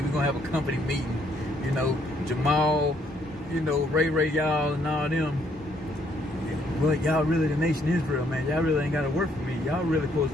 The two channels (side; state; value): both; normal; correlation 0.69